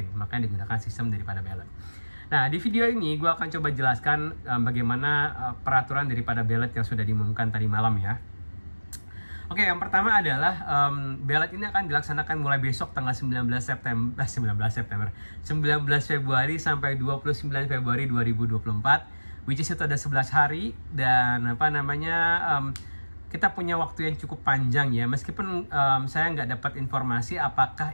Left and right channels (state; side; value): inverted; both; correlation -1.00